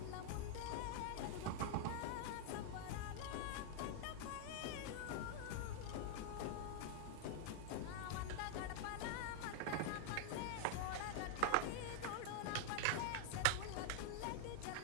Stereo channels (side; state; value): both; different; correlation 0.00